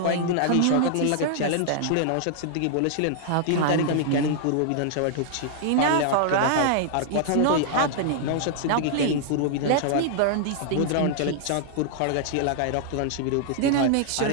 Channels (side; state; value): both; different; correlation -0.01